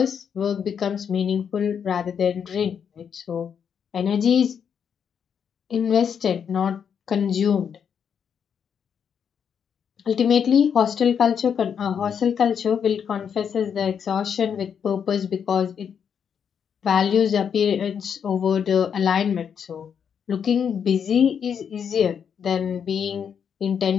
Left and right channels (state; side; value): quieter; right; 7.5 dB